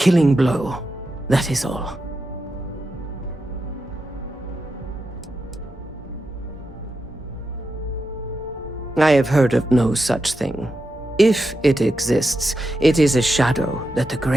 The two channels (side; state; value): both; normal; correlation 0.88